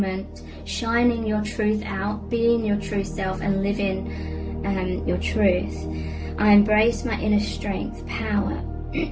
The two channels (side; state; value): both; identical; correlation 1.00